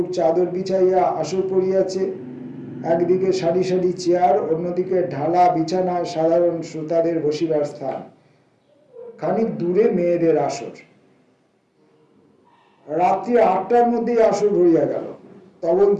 চাদর বিছাইয়া আসর পড়িয়াছে, একদিকে সারি সারি চেয়ার, অন্যদিকে ঢালা বিছানা, সাধারণ শ্রোতাদের বসিবার স্থান, খানিক দূরে মেয়েদের আসর। রাত্রি 8টার মধ্যেই আসর ভরিয়া গেল।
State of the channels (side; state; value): both; identical; correlation 1.00